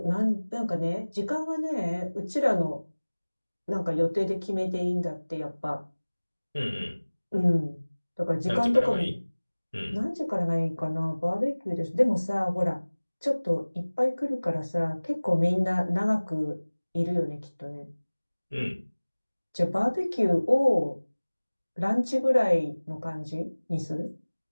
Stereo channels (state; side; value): inverted; both; correlation -1.00